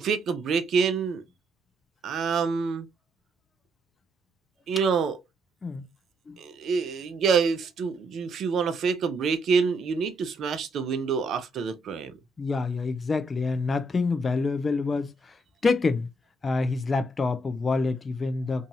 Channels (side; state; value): both; normal; correlation 0.74